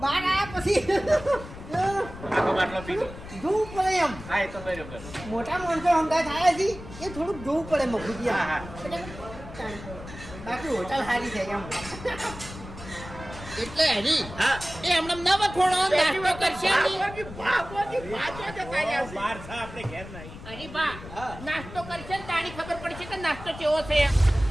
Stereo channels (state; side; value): noise; left; rumble, 14 dB below the sound